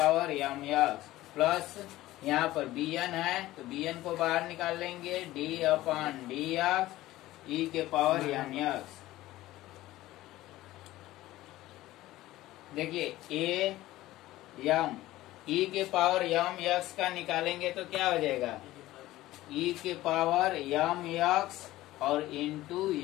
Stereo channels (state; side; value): quieter; right; 16.4 dB